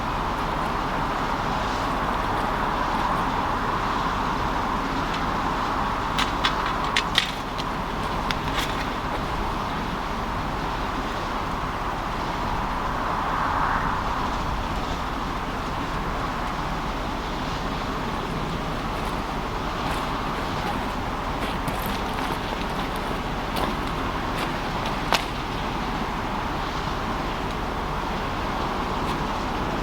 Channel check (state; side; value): identical; both; correlation 1.00